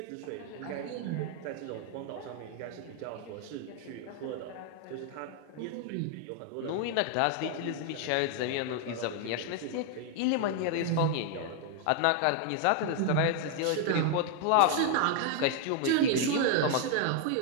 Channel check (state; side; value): different; both; correlation 0.00